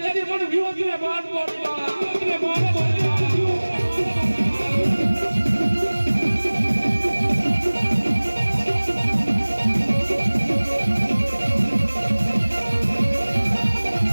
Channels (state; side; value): inverted; both; correlation -1.00